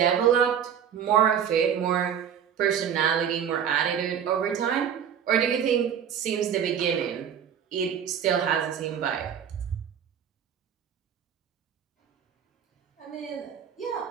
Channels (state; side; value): quieter; left; 8.5 dB